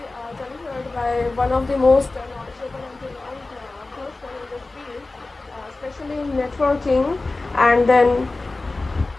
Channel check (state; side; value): quieter; right; 3.3 dB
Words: delivered by one of the most knowledgeable and renowned person in this field, especially in networking. And then,